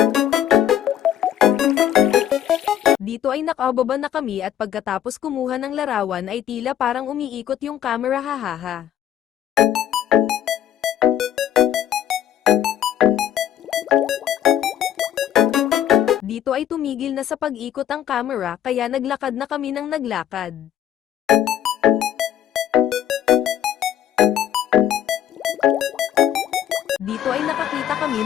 Dito ay nakababa na kami at pagkatapos kumuha ng larawan ay tila parang umiikot yung camera hahaha. Dito ay tumigil na sa pag-ikot ang camera kaya naglakad na kami ng naglakad. Dito ay nakakita kami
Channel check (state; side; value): quieter; right; 10.7 dB